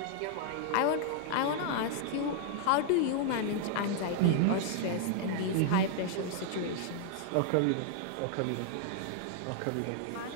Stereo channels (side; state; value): both; different; correlation -0.01